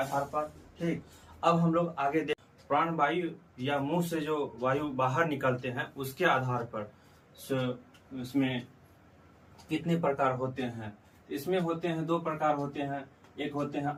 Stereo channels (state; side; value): identical; both; correlation 1.00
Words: पर, ठीक। अब हम लोग आगे देख प्राण वायु या मुंह से जो वायु बाहर निकलते हैं उसके आधार पर इसमें कितने प्रकार होते हैं। इसमें होते हैं 2 प्रकार होते हैं, एक होते हैं